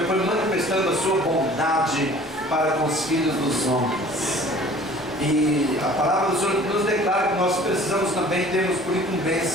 foi manifestando a sua bondade para com os filhos dos homens. E a palavra do Senhor nos declara que nós precisamos também, temos por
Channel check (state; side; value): normal; both; correlation 0.49